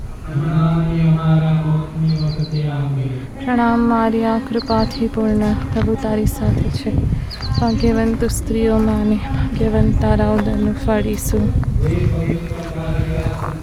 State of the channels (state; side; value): identical; both; correlation 1.00